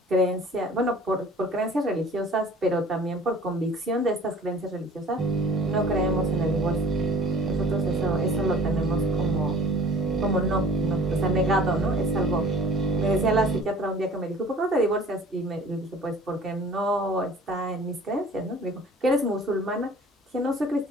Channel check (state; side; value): normal; both; correlation 0.48